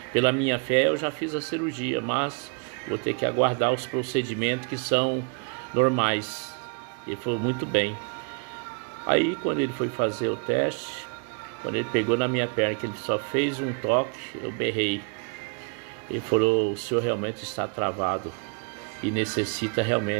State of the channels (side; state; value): left; quieter; 37.1 dB